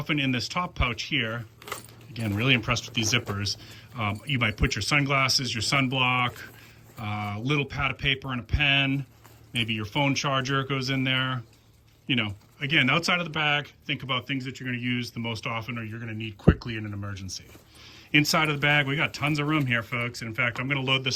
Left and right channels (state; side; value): identical; both; correlation 1.00